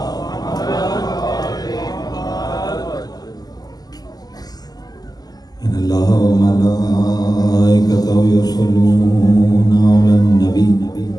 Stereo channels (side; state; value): right; late; 0.19 ms